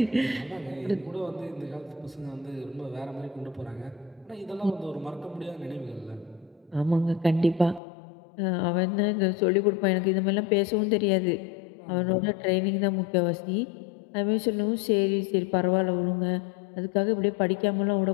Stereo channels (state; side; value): drops out; right; at 7.8 s